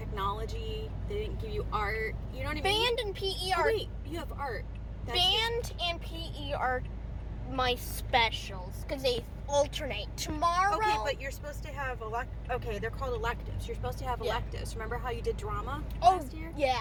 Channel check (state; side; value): identical; both; correlation 1.00